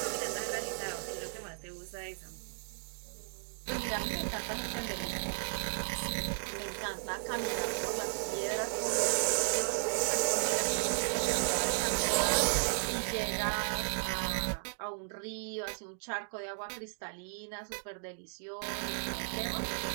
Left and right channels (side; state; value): left; silent; digital silence